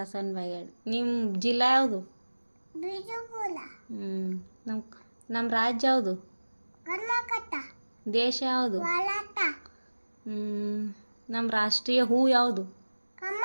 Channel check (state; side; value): inverted; both; correlation -1.00